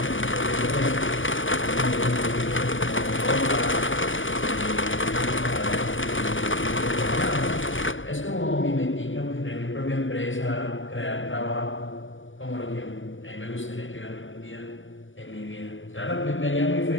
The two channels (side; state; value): right; late; 0.57 ms